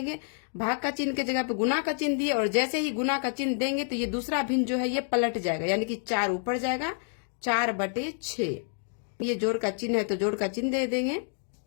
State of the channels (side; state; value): right; silent; 59 dB below the other